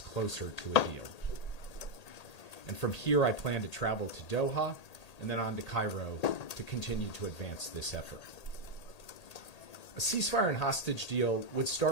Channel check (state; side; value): late; right; 1.8 ms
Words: closer to a deal. And from here, I plan to travel to Doha and then on to Cairo to continue to advance this effort. A ceasefire and hostage deal would